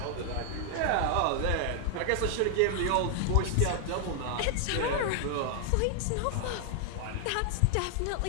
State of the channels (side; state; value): both; different; correlation 0.00